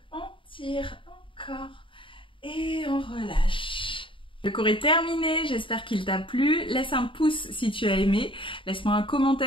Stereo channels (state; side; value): late; right; 0.25 ms